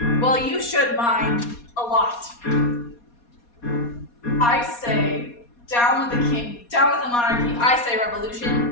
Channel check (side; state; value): right; late; 4.2 ms